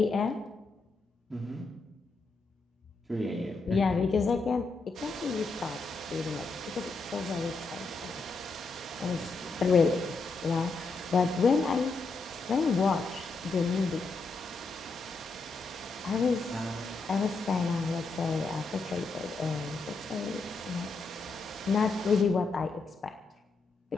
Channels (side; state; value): right; quieter; 3.7 dB